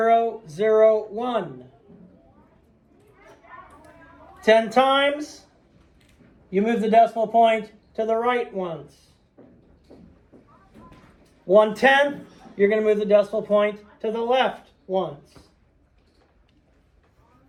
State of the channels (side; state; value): both; identical; correlation 1.00